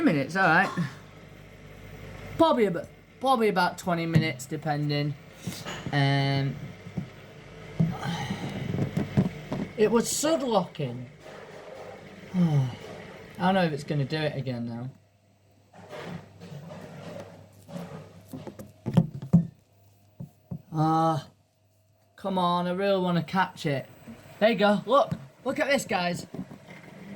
minutes. All right, probably about 20 minutes, depending. It was sudlocking. I don't know if it's gonna do it again now. Come on, I really want to catch it. There you go, look at this, guys.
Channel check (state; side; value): identical; both; correlation 1.00